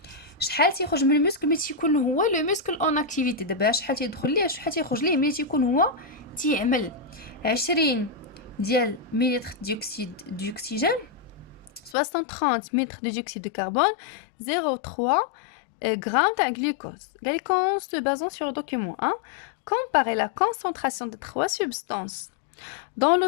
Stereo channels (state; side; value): drops out; right; at 12.0 s